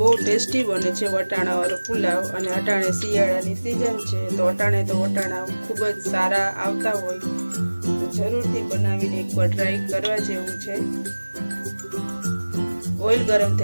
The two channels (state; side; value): inverted; both; correlation -1.00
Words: ટેસ્ટી બને છે વટાણાવાળો પુલાવ અને અટાણે શિયાળાની સિઝન છે તો અટાણે તો વટાણા ખૂબ જ સારા આવતા હોય તો જરૂરથી બનાવીને એકવાર ટ્રાય કરવા જેવું છે। ઓઇલ ગરમ